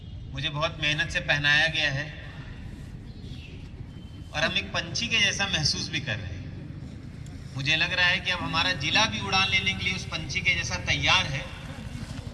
मुझे बहुत मेहनत से पहनाया गया है और हम एक पंछी के जैसा महसूस भी कर रहे हैं। मुझे लग रहा है कि अब हमारा जिला भी उड़ान लेने के लिए उस पंछी के जैसा तैयार है।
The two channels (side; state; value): both; identical; correlation 1.00